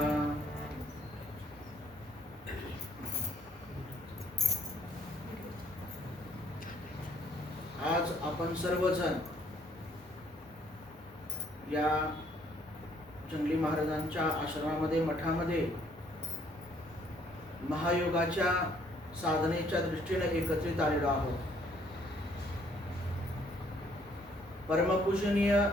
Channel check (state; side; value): normal; both; correlation 0.64